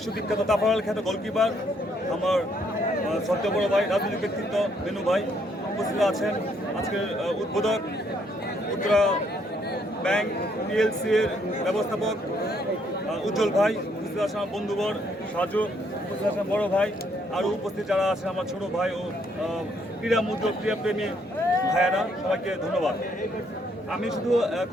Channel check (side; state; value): both; normal; correlation 0.70